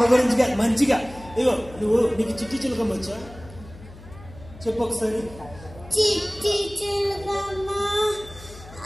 గురించి మంచిగా. ఇగో నీకు చిట్టి చిలకమ్మ వచ్చా? చెప్పు ఒకసారి. చిట్టి చిలకమ్మ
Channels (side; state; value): left; noise; hum, 18 dB below the sound